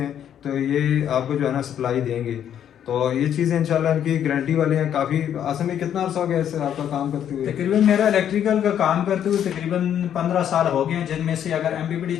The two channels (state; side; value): quieter; right; 9.7 dB